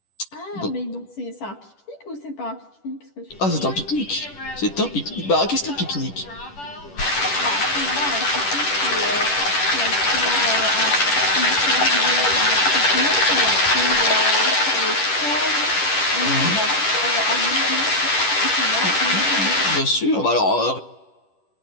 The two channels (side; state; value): right; late; 10 ms